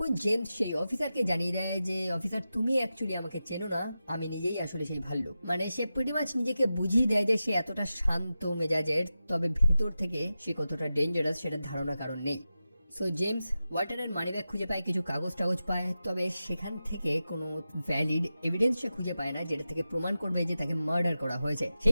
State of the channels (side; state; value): both; inverted; correlation -0.92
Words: জেমস সেই অফিসারকে জানিয়ে দেয় যে অফিসার, তুমি অ্যাকচুয়ালি আমাকে চেনো না, আমি নিজেই আসলে সেই ভাল্লুক। মানে সে প্রিটি মাচ নিজেকে বুঝিয়ে দেয় যে সে এতটা শান্ত মেজাজের, তবে ভেতর থেকে সে কতটা ডেঞ্জারাস সেটা ধারণা কারণ নেই। সো জেমস ওয়াল্টারের মানিব্যাগ খুঁজে পায়, কিছু কাগজ টাগজ পায়, তবে সেখান থেকে কোনো ভ্যালিড এভিডেন্স সে খুঁজে পায় না যেটা থেকে প্রমাণ করবে যে তাকে মার্ডার করা হয়েছে।